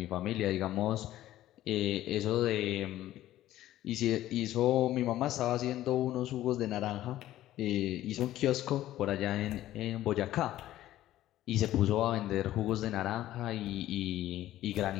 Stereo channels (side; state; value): right; quieter; 14.0 dB